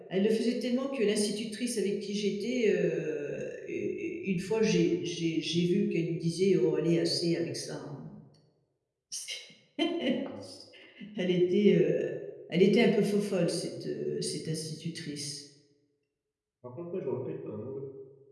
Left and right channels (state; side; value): identical; both; correlation 1.00